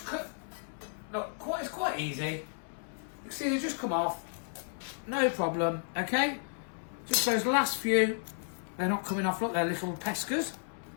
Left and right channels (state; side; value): silent; right; 56 dB below the other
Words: cut, look, it's quite easy. You can see they just come off, no problem, okay? Just those last few, they're not coming off, look, they're little pescas.